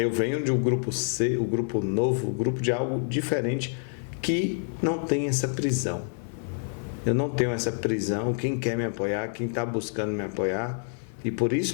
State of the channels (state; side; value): silent; right; 60 dB below the other